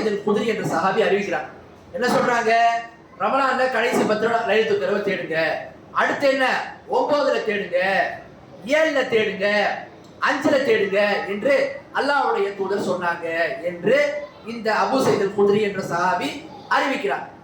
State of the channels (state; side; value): identical; both; correlation 1.00